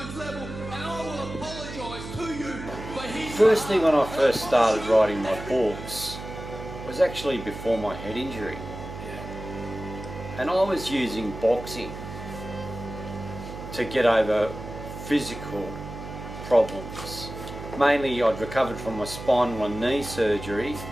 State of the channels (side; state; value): right; noise; hum, 10 dB below the sound